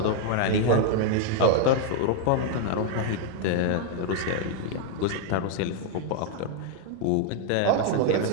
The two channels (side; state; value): both; different; correlation 0.00